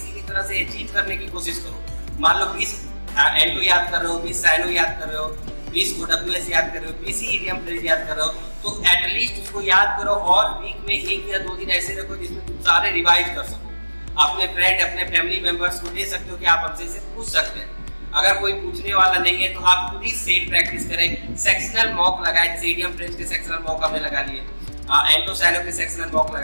भी तरह से अचीव करने की कोशिश करो। मान लो 20 एंटो याद कर रहे हो, 20 साइनो याद कर रहे हो, 20 OWS याद कर रहे हो, 20 इडियम फ्रेज याद कर रहे हो, तो एटलीस्ट उसको याद करो। और वीक में 1 या 2 दिन ऐसे रखो जिसमें तुम सारे रिवाइज कर सको। अपने फ्रेंड, अपने फैमिली मेंबर्स को दे सकते हो कि आप हमसे इसे पूछ सकते हैं। अगर कोई पूछने वाला नहीं है तो आप खुद ही सेट प्रैक्टिस करें, सेक्शनल मॉक लगाएं। जैसे इडियम फ्रेज के सेक्शनल मॉक हमने लगा लिए, एंटो साइनो के सेक्शनल मॉक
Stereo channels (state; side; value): inverted; both; correlation -1.00